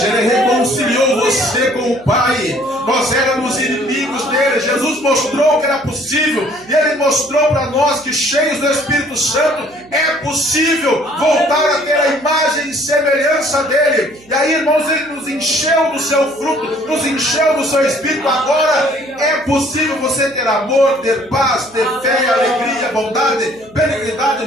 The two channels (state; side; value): noise; right; hum, 27 dB below the sound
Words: Ele reconciliou você com o Pai. Nós éramos inimigos dele. Jesus mostrou que era possível. E Ele mostrou para nós que, cheios do Espírito Santo, é possível voltar a ter a imagem e semelhança dele. E aí, irmãos, Ele nos encheu do seu fruto, nos encheu do seu Espírito. Agora é possível você ter amor, ter paz, ter fé, alegria, bondade, benignidade,